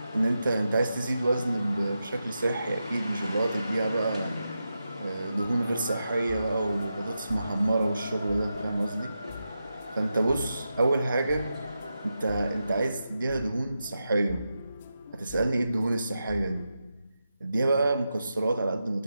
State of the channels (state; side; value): inverted; both; correlation -0.88